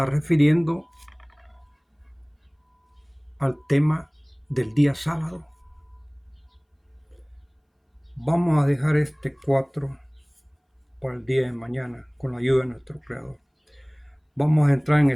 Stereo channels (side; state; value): both; identical; correlation 1.00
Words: refiriendo al tema del día sábado. Vamos a dejar este 4 para el día de mañana con la ayuda de nuestro Creador. Vamos a entrar en